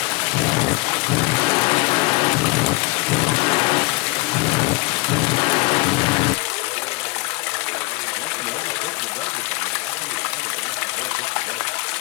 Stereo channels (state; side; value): quieter; right; 26.8 dB